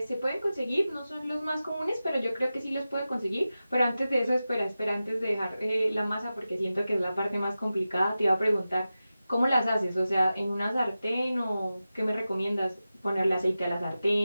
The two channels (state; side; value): inverted; both; correlation -0.94